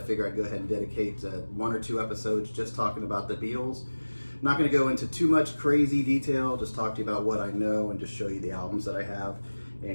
figure I'd go ahead and dedicate one or two episodes just talking about the Beatles. I'm not going to go into too much crazy detail, just talk to you about what I know and just show you the albums that I have.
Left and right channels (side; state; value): both; inverted; correlation -1.00